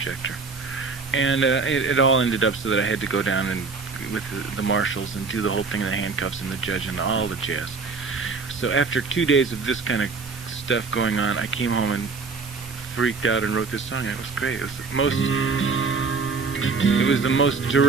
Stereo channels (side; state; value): left; quieter; 4.5 dB